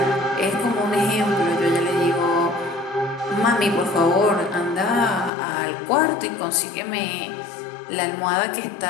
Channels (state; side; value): drops out; right; at 5.3 s